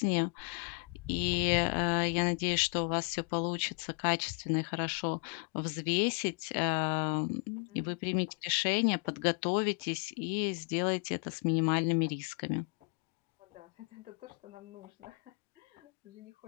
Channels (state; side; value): quieter; right; 34.7 dB